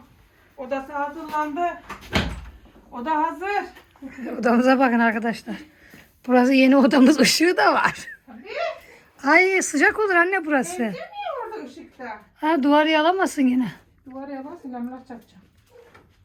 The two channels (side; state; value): both; identical; correlation 1.00